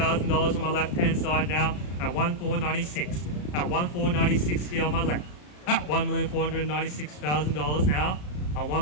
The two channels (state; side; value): late; right; 34 ms